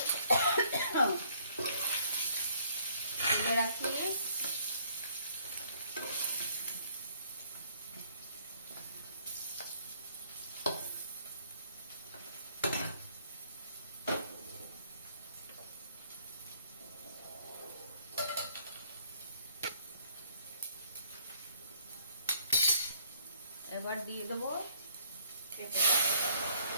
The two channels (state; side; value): inverted; both; correlation -0.62